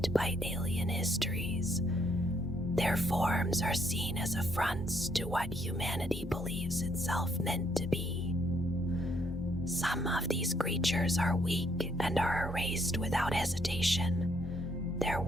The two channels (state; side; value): normal; both; correlation 0.70